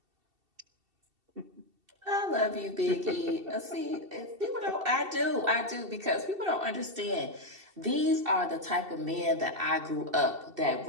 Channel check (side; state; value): left; late; 2.7 ms